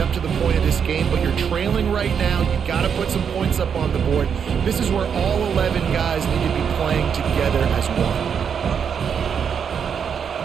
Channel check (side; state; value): left; quieter; 7.2 dB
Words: to the point of this game, but you're trailing right now. You've got to put some points up on the board. This is where all 11 guys need to be playing together as one.